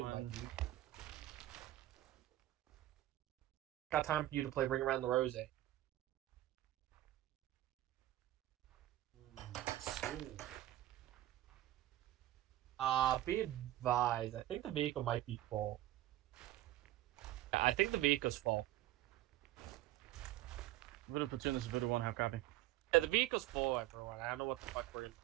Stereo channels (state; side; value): quieter; left; 15.1 dB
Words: buddy. Got time for you to play Ring Around the Rosy. Be advised. I think the vehicle might be full. Yeah, I think the vehicle's full. Voodoo platoon, this is Voodoo 1, how copy? Yeah, the vehicle's full, everyone. I don't know what the fuck we're gonna